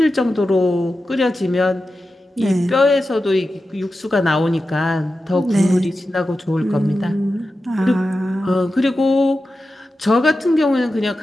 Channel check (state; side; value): normal; both; correlation 0.92